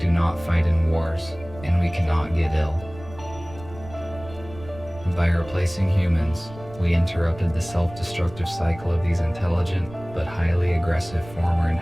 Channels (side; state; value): right; noise; rumble, 17 dB below the sound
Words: not fight in wars, and we cannot get ill. By replacing humans, we interrupted the self-destructive cycle of these intelligent but highly aggressive former